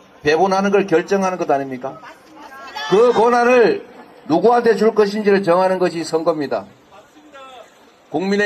배분하는 걸 결정하는 것 아닙니까? 그 권한을 누구한테 줄 것인지를 정하는 것이 선거입니다.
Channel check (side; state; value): both; identical; correlation 1.00